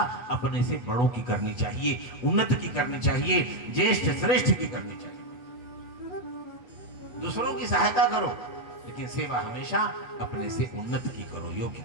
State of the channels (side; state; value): right; late; 8.1 ms